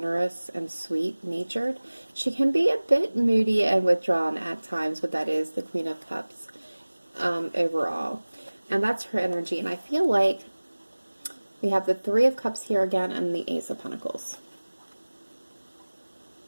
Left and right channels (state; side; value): inverted; both; correlation -1.00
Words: and sweet-natured. She can be a bit moody and withdrawn at times, but that is the Queen of Cups overall. And that's her energy. And I feel like we have the Three of Cups here again and the Ace of Pentacles.